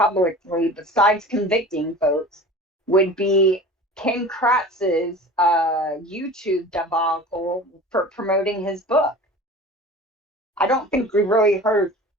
besides convicting folks, would be Ken Kratz's YouTube debacle for promoting his book. I don't think we really heard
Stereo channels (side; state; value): both; normal; correlation 0.39